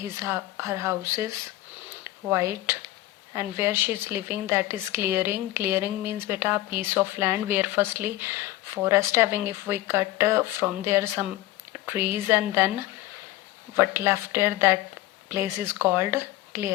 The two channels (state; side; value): quieter; right; 16.0 dB